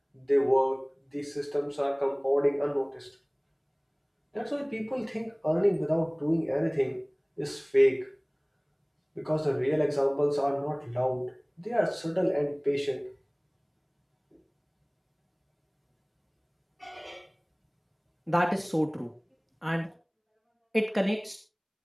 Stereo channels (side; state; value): both; identical; correlation 1.00